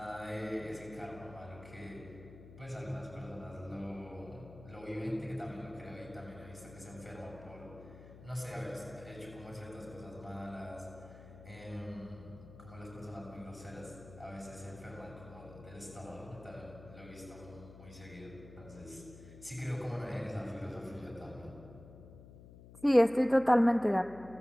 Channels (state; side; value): noise; left; hum, 16 dB below the sound